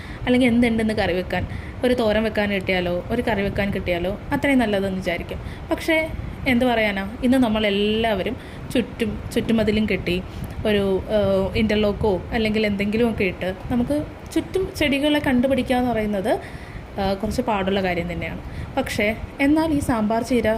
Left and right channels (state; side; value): identical; both; correlation 1.00